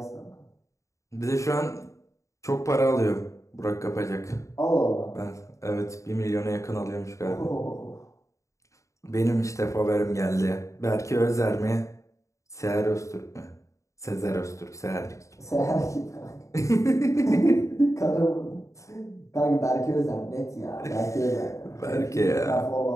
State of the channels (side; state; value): right; late; 0.15 ms